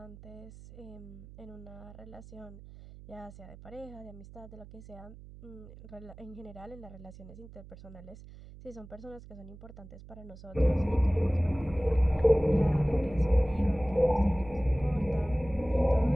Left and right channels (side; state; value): right; noise; hum, 17 dB below the sound